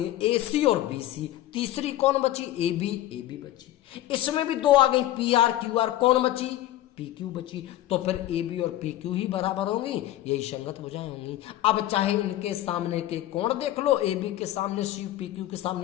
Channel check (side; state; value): right; quieter; 14.1 dB